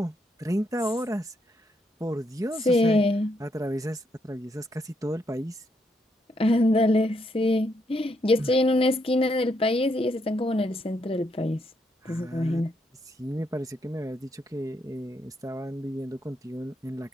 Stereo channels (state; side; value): normal; both; correlation 0.77